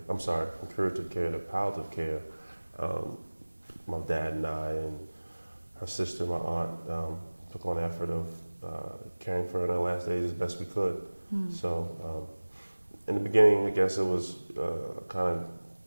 from curative care to palliative care, my dad and I and her sister, my aunt, took on the effort of caring for her in her last days as best we could. So in the beginning, I guess it was kind of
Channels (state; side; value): inverted; both; correlation -1.00